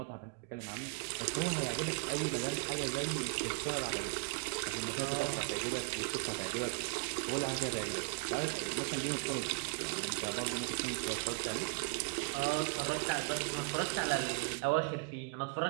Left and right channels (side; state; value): left; quieter; 34.4 dB